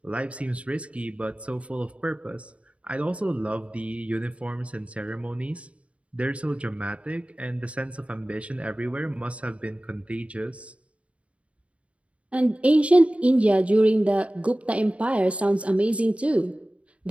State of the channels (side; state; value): left; late; 0.063 ms